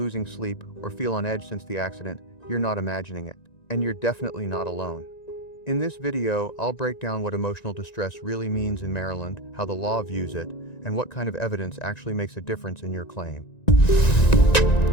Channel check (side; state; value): right; late; 1.9 ms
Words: sleep, or feel on edge since the accident, you're not imagining it. And you're definitely not alone. In this video, I'll break down what emotional distress really means in Maryland, how the law views it, and what kind of evidence actually makes a difference in your claim.